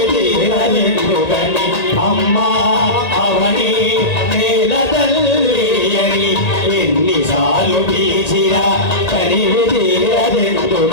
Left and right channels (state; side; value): late; right; 1.8 ms